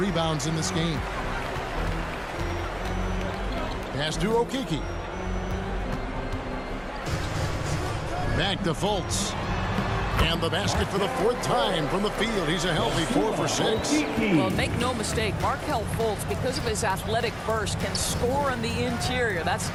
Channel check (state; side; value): identical; both; correlation 1.00